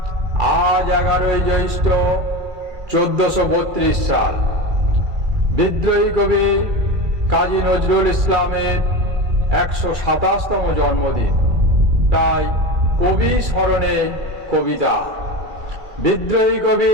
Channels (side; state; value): left; late; 2.3 ms